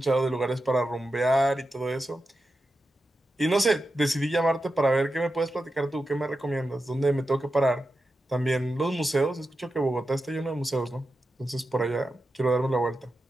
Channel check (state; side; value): normal; both; correlation 0.90